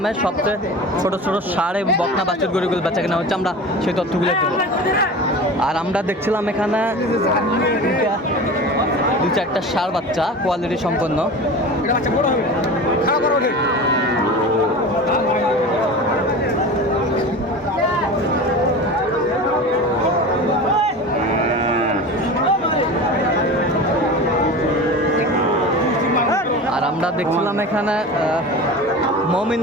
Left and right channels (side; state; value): both; normal; correlation 0.33